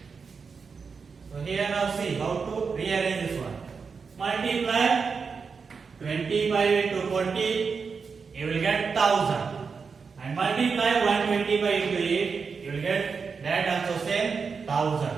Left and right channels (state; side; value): quieter; left; 5.3 dB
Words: So here now see how to rearrange this one. Multiply 25 into 40, you will get 1000. And multiply 125 into 8, you you will get that also same 1000.